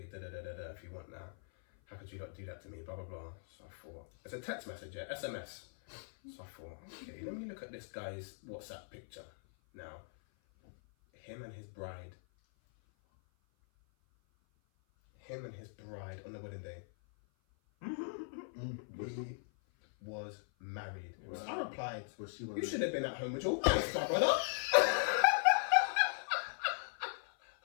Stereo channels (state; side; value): silent; right; 52 dB below the other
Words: if you want that, how could you not do that to me? Blah blah blah. So I thought it's a text message, yeah, SMS. So I thought, okay, let me look at this guy's WhatsApp picture now. Him and his bride on the wedding day. He was married. Was I replied, Was she you should have been at home with your wife, my brother.